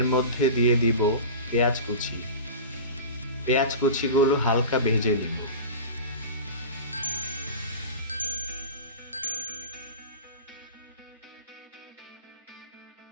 মধ্যে দিয়ে দিব পেঁয়াজ কুচি। পেঁয়াজ কুচিগুলো হালকা ভেজে নিব।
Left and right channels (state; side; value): inverted; both; correlation -0.32